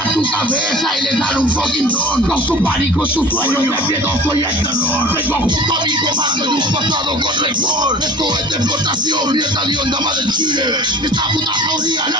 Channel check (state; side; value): normal; both; correlation 0.42